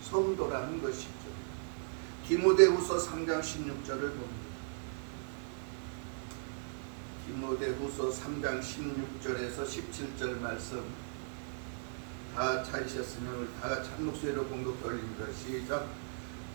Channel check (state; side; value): silent; left; digital silence